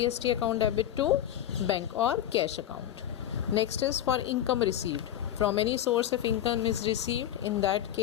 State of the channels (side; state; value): right; quieter; 11.3 dB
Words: account debit to bank or cash account. Next is for income received. From any source of income is received, in that